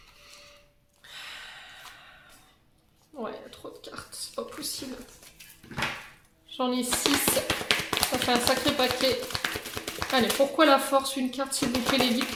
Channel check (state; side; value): identical; both; correlation 1.00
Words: Ouais, il y a trop de cartes, c'est pas possible. J'en ai 6. Ça fait un sacré paquet. Allez, pourquoi la force? Une carte, s'il vous plaît, les guides.